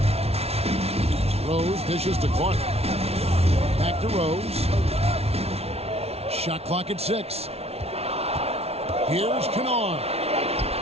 Rose dishes to Clark. Back to Rose. Shot clock at 6. Here's Kennard.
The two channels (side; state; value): left; late; 0.30 ms